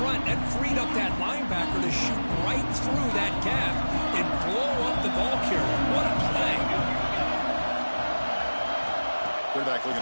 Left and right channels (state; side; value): inverted; both; correlation -1.00